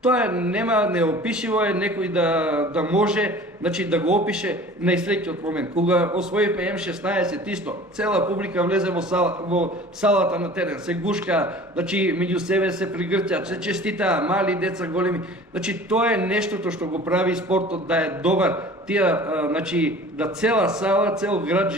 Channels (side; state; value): both; normal; correlation 0.44